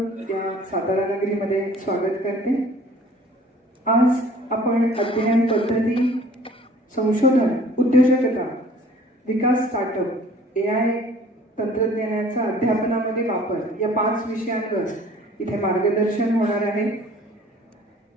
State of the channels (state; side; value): normal; both; correlation 0.52